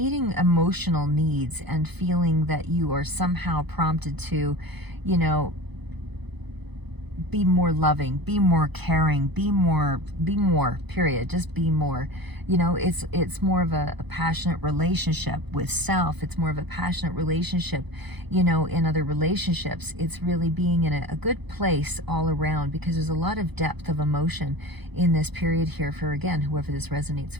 emotional needs and feeling that you are somehow prompted to, be more loving, be more caring, be more, period. Just be more. It's more of a passionate relationship with self. It's more of a passionate relationship, in other relationships. It's really being in a good place all around, because there's a lot of depth of emotion in this period here for, again, whoever this resonates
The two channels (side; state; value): left; late; 0.99 ms